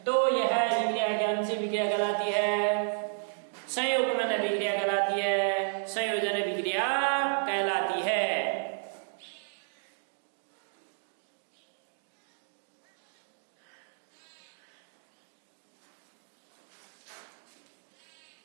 तो यह विक्रिया कौन सी विक्रिया कहलाती है? संयुग्मन अभिक्रिया कहलाती है, संयोजन अभिक्रिया कहलाती है।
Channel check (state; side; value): silent; left; digital silence